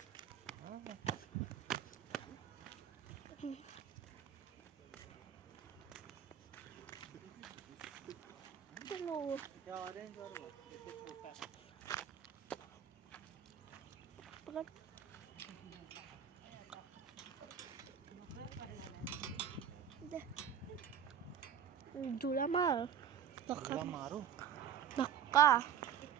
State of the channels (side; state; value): left; quieter; 8.6 dB